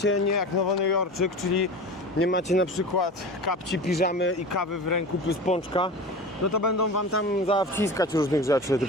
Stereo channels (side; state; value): both; normal; correlation 0.32